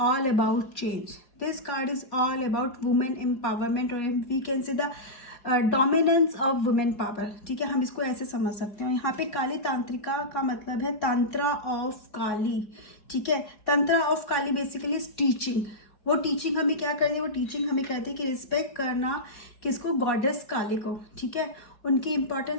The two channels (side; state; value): right; late; 4.7 ms